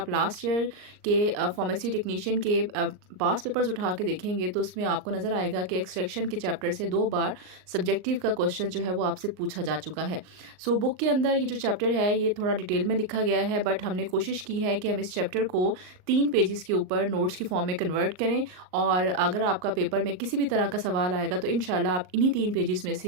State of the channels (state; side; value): late; left; 39 ms